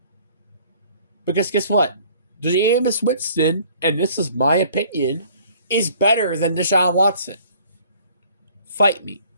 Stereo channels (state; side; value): inverted; both; correlation -0.55